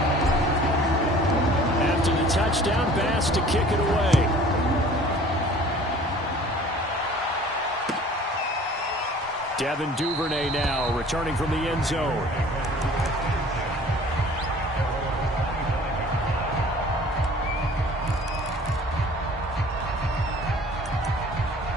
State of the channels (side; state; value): both; normal; correlation 0.49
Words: After the touchdown, Bass to kick it away. Devin Duvernay now returning from the end zone.